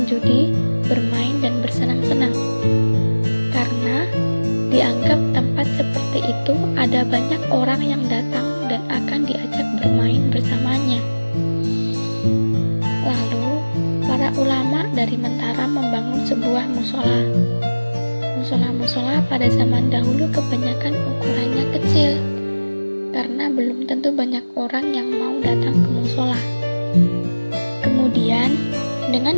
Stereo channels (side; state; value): both; inverted; correlation -1.00